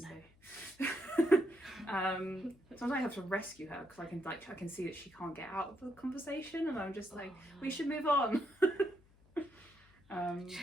sometimes I have to rescue her because I can see that she can't get out of the conversation, and I'm just like, we should move on.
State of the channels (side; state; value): left; noise; hum, 28 dB below the sound